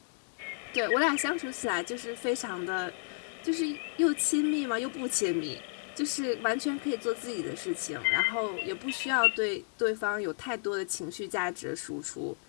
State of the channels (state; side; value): silent; right; digital silence